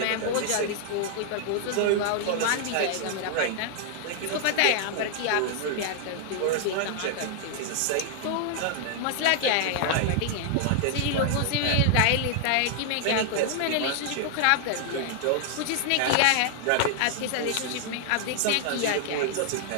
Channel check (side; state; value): both; different; correlation 0.00